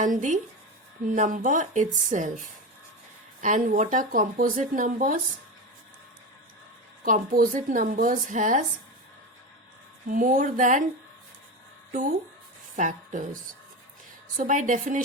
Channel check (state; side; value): normal; both; correlation 0.21